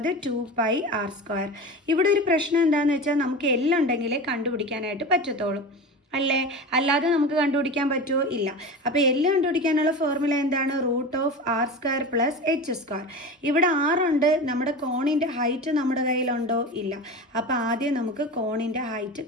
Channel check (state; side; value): normal; both; correlation 0.29